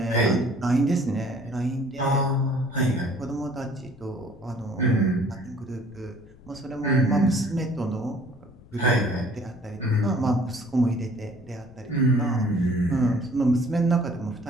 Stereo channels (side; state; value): left; noise; rumble, 23 dB below the sound